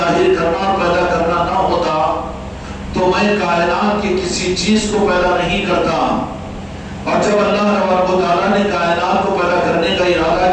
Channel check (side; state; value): both; identical; correlation 1.00